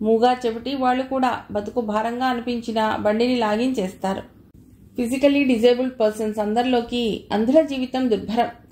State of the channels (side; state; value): both; identical; correlation 1.00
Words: మూగా చెవిటి వాళ్ళు కూడా బతుకు భారంగా అనిపించినా బండిని లాగించేస్తారు. ఫిజికల్లీ డిజేబుల్డ్ పర్సన్స్ అందరిలోకి అంధుల జీవితం దుర్భరం.